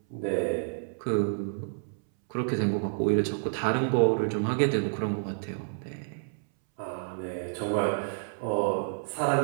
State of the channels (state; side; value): silent; left; 58 dB below the other